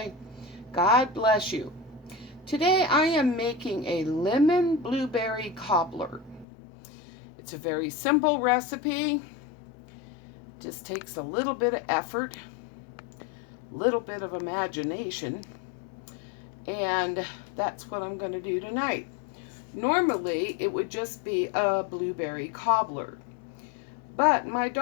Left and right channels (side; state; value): right; drops out; at 6.5 s